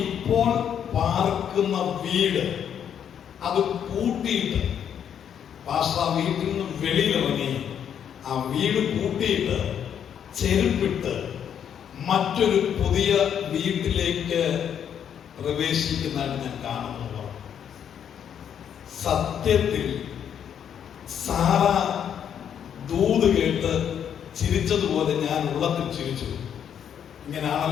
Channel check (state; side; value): quieter; right; 8.7 dB